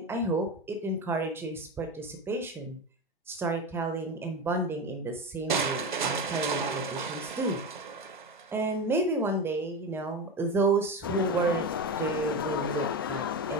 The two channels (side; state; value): both; normal; correlation 0.21